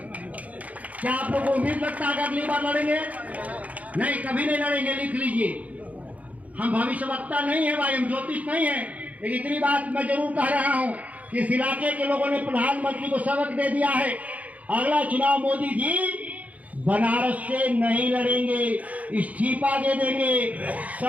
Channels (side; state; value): left; late; 0.072 ms